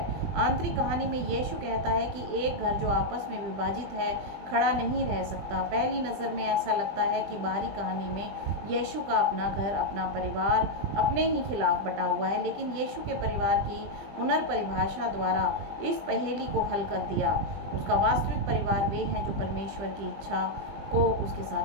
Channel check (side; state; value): left; late; 20 ms